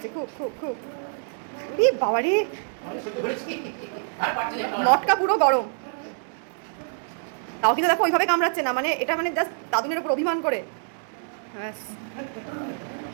খুব খুব খুব। বাবা রে, মটকা পুরো গরম। তাও কিন্তু দেখো ওইভাবে কামড়াচ্ছে না, মানে এটা মানে জাস্ট দাদুনের উপর অভিমান করে। ব্যাস,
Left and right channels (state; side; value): silent; left; digital silence